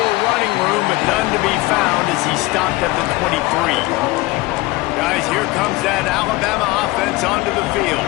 running room, but none to be found as he stopped at the 23. Guys, here comes that Alabama offense onto the field.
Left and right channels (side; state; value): right; quieter; 21.0 dB